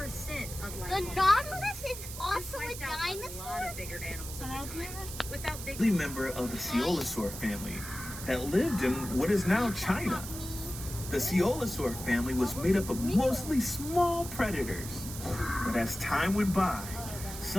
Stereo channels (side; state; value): right; noise; hiss, 10 dB below the sound